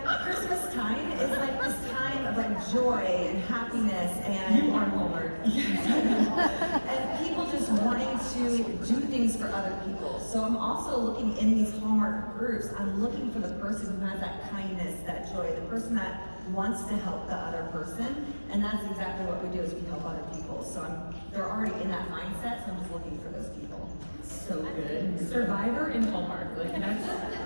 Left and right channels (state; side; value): inverted; both; correlation -1.00